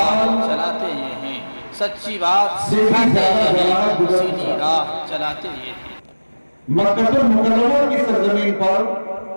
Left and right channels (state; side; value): inverted; both; correlation -1.00